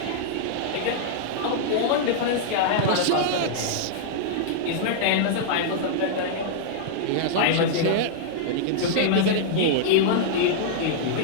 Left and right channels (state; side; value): different; both; correlation -0.02